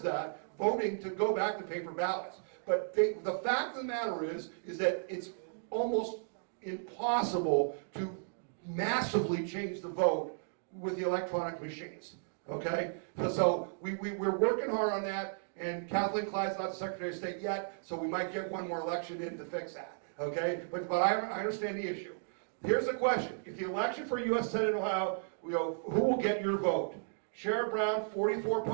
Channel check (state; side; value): silent; left; digital silence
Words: that, voting to go back to paper ballots. But the fact of the matter is that it's almost impossible to massively change the vote with the electronic machines. Okay? So we're working hard on that, and Kathleen Clyde's not the Secretary of State yet, so we might get one more election in to fix that. Okay? But I understand the issue. Here's the question. If the election for U.S. Senate in Ohio, who will get your vote? Sherrod Brown,